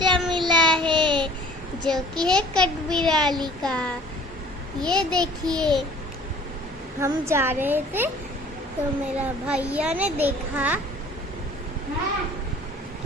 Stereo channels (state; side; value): normal; both; correlation 0.50